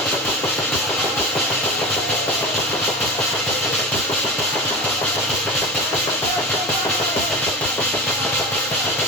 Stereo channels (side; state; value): both; normal; correlation 0.28